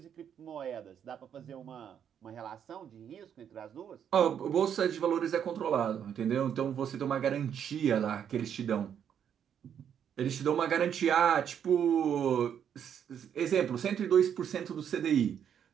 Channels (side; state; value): left; quieter; 8.6 dB